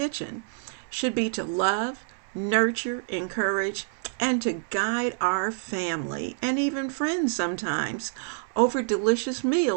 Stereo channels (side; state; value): left; silent; 60 dB below the other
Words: should be to love, nurture, encourage, and to guide our family and even friends sometimes over delicious